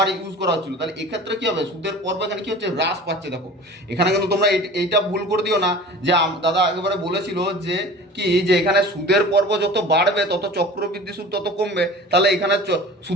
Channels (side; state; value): both; normal; correlation 0.40